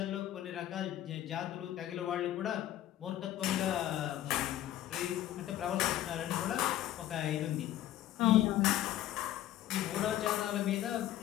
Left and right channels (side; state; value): right; quieter; 13.1 dB